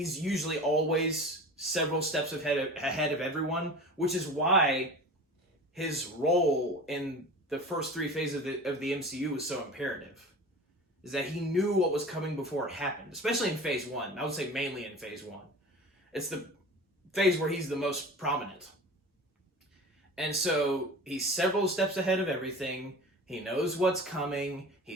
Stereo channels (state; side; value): normal; both; correlation 0.36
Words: usually always several steps ahead of everyone, which is why his role in the first three phases of the MCU was so imperative. Is that he knew what was coming before it happened, especially in phase 1. I would say mainly in phase 1. It's the phase where he's the most prominent. And so he's several steps ahead of everything. He knows what's coming.